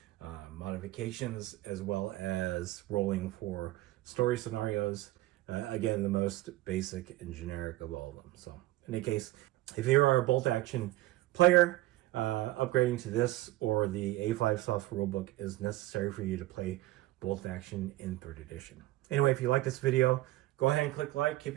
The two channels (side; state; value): left; quieter; 17.3 dB